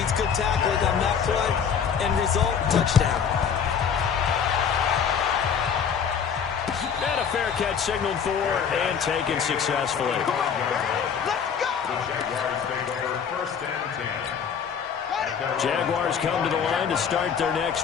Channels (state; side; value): quieter; right; 7.1 dB